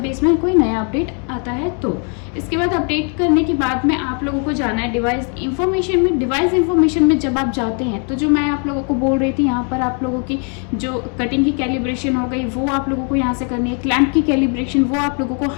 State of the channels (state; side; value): quieter; right; 39.9 dB